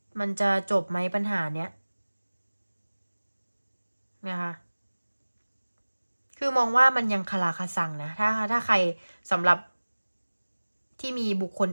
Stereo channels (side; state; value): both; inverted; correlation -1.00